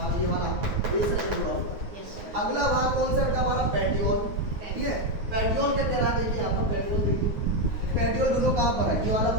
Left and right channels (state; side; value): late; left; 9.5 ms